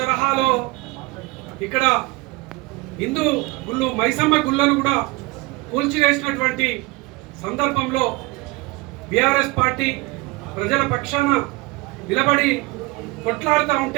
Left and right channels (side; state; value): left; quieter; 22.7 dB